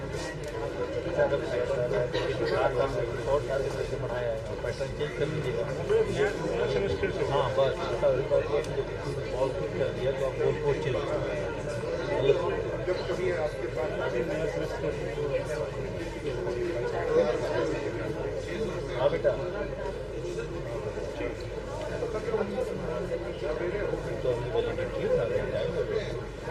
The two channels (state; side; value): identical; both; correlation 1.00